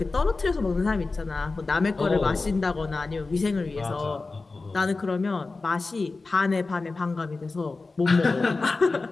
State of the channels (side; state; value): right; quieter; 3.7 dB